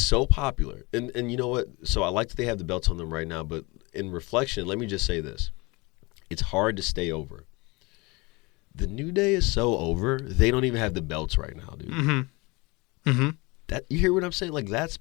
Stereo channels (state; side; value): quieter; right; 25.5 dB